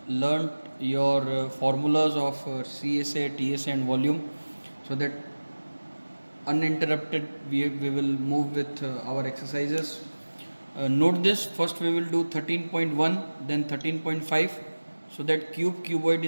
learnt your formulas of CSA, TSA and volume, so that uninterrupted we will move with our exercises. Note this, first we will do 13.1, then 13.5, so that cuboid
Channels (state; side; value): inverted; both; correlation -1.00